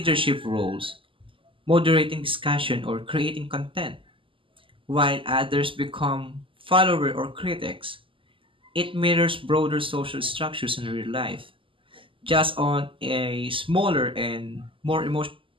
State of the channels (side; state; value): left; late; 0.25 ms